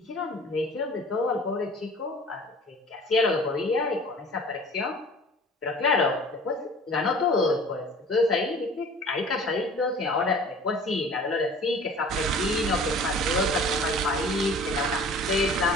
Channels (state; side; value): normal; both; correlation 0.45